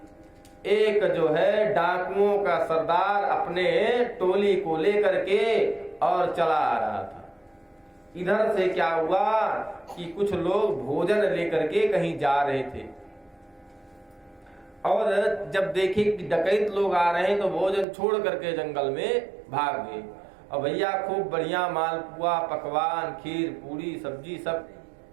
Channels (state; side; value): drops out; left; at 17.9 s